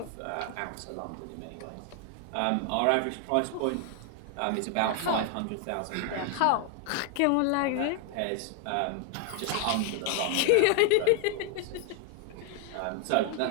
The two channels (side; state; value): both; different; correlation 0.00